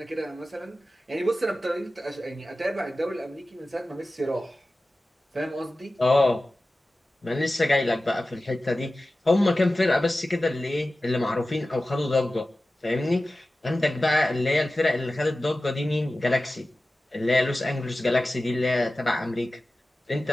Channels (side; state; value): both; normal; correlation 0.95